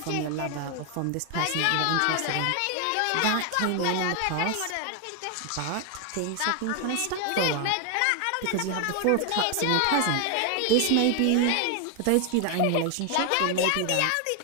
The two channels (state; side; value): different; both; correlation 0.01